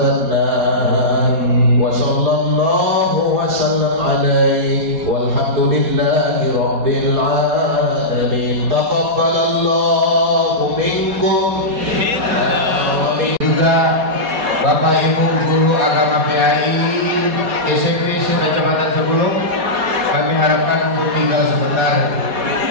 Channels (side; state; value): left; late; 4.2 ms